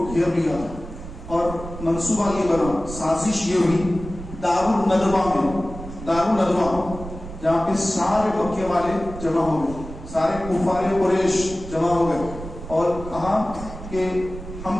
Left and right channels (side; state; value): right; noise; rumble, 11 dB below the sound